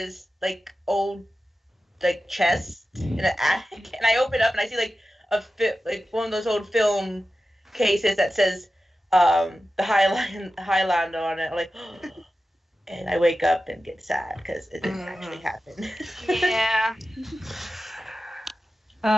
old chest in an attic, and I open up and I see one of those old film cases that says the Highlander on it. I'm like, and I wake up and get sad because it didn't actually happen. Yeah.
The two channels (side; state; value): both; normal; correlation 0.93